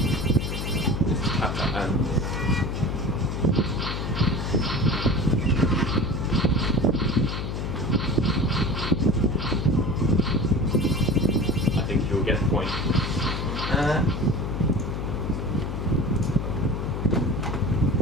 This is Tap Tap Ants. You'll get the point.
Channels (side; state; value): left; noise; hum, 3 dB below the sound